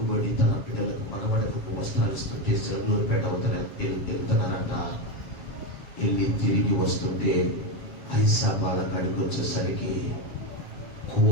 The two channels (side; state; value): right; late; 7.3 ms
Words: తన పిల్లలకు మనవడకు వస్త్రాలు ఇస్తుంటే సెలవులపేట వెళ్తున్నారట. వెళ్ళి తిరిగి వస్తుంటే ఐసాబాల కాడికి వచ్చేసరికి